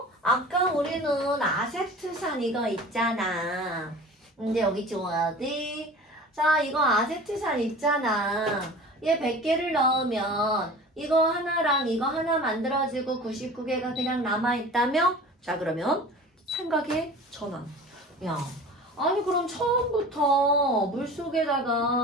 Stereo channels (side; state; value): both; normal; correlation 0.39